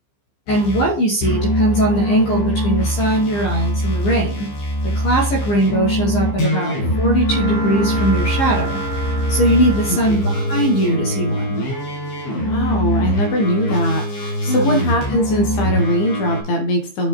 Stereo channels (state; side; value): late; right; 15 ms